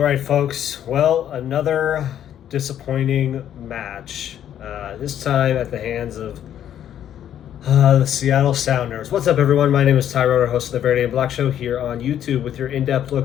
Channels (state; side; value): quieter; right; 10.5 dB